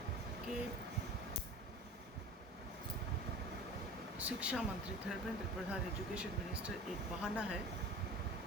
कि शिक्षा मंत्री धर्मेंद्र प्रधान, एजुकेशन मिनिस्टर, एक बहाना है।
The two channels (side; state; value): both; normal; correlation 0.38